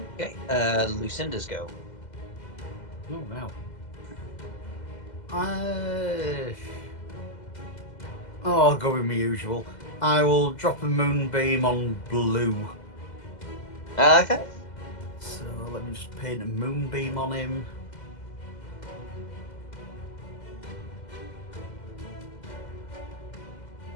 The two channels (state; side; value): late; right; 2.0 ms